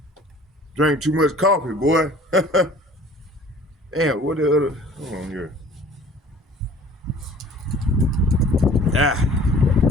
Drink too much coffee, boy. Damn, what the other? Hold on here.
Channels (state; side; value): normal; both; correlation 0.49